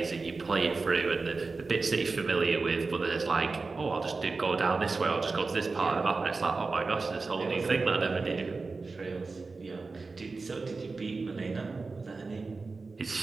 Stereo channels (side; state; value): left; quieter; 4.0 dB